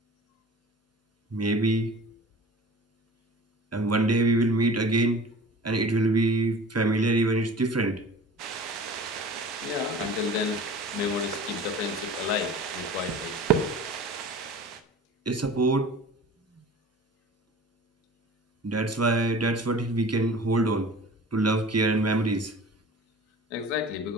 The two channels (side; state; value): both; normal; correlation 0.41